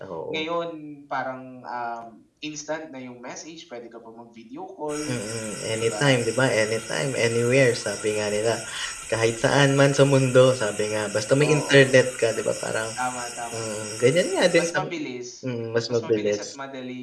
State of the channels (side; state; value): both; identical; correlation 1.00